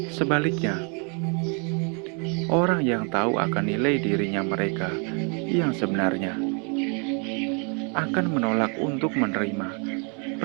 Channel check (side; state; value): left; quieter; 36.8 dB